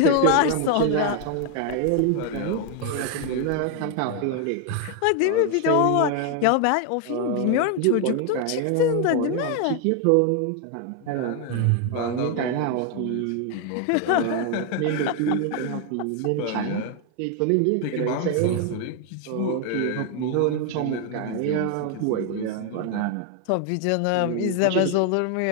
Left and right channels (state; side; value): different; both; correlation 0.01